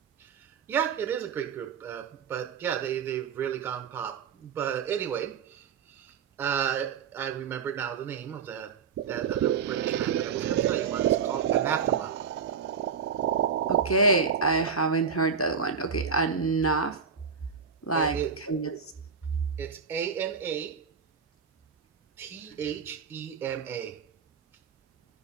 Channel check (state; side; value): quieter; left; 6.2 dB